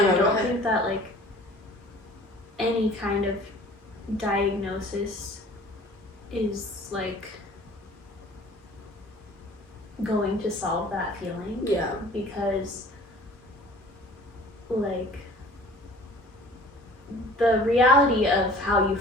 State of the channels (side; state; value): both; normal; correlation 0.48